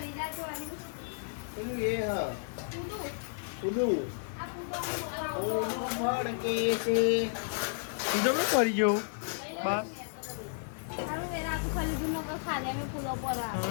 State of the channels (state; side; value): silent; right; digital silence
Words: જાય તો આની પેલું એ હા ઊંધું. ઉડું આ ફૂટો ઓલું મડકે છે બીજો મેં કરી ગયો બા સારું વેરા તું ખાલી દૂર નકર ખાલે અમે ફૂલો પર આ